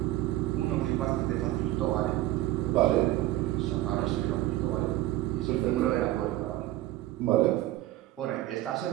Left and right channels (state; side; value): quieter; left; 15.7 dB